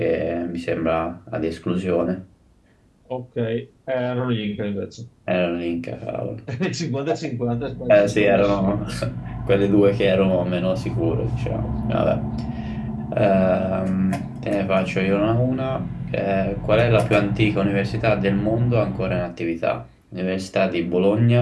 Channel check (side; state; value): both; identical; correlation 1.00